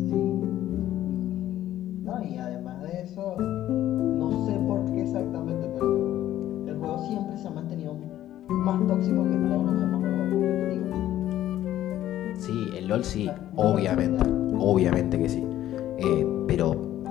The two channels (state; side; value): quieter; right; 12.9 dB